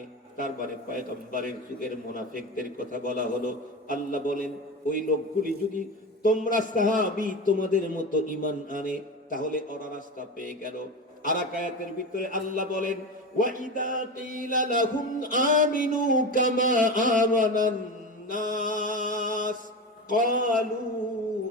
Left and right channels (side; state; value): both; normal; correlation 0.23